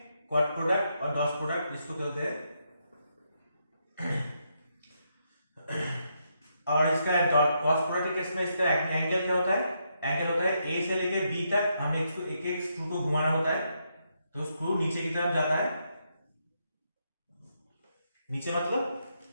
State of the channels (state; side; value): inverted; both; correlation -0.79